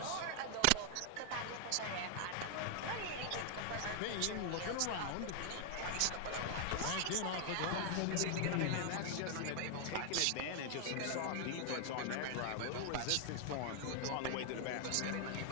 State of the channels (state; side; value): different; both; correlation 0.00